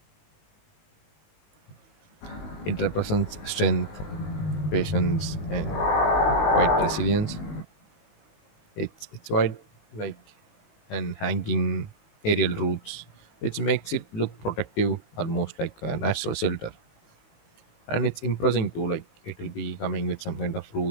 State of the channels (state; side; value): late; right; 19 ms